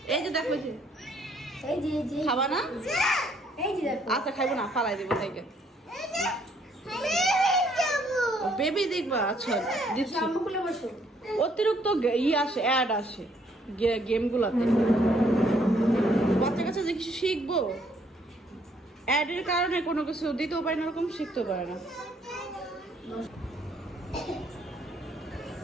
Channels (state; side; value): normal; both; correlation 0.67